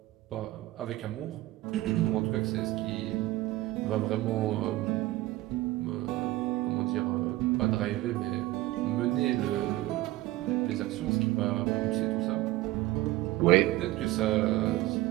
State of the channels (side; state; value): left; quieter; 17.4 dB